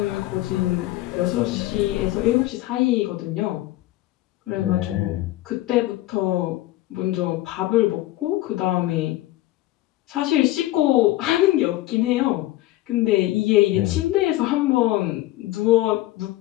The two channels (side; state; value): right; quieter; 16.5 dB